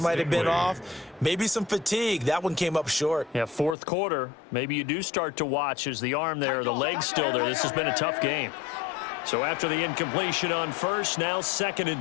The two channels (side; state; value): right; drops out; at 3.8 s